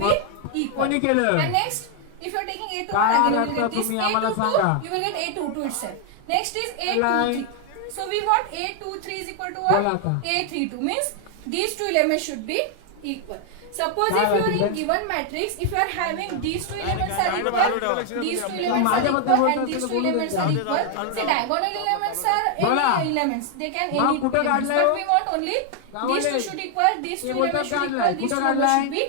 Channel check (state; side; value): different; both; correlation 0.00